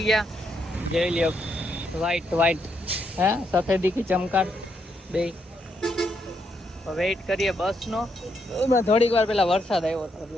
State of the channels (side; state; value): both; normal; correlation 0.78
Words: ગયા. જોઈ લ્યો વ્હાઈટ હે સફેદી કી ચમકાટ બે. વેઇટ કરીએ બસનો. એમાં થોડીક વાર પેલા વરસાદ આવ્યો હતો